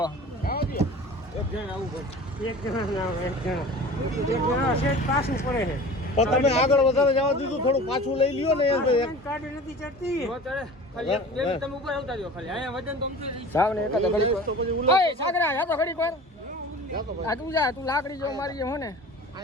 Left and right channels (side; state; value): both; normal; correlation 0.40